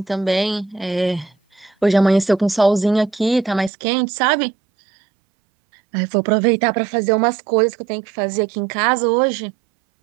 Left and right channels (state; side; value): drops out; left; at 3.7 s